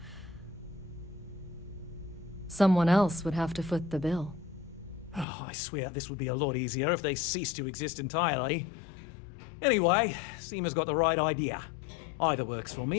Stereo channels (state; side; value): drops out; right; at 5.2 s